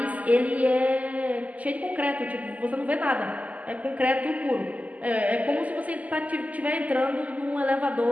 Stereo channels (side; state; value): left; late; 0.074 ms